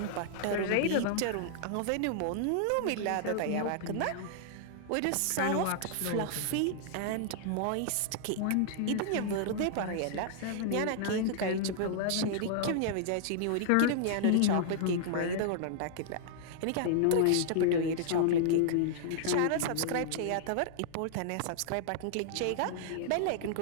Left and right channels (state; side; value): different; both; correlation -0.01